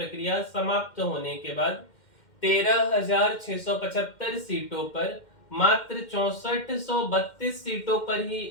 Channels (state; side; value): late; right; 2.1 ms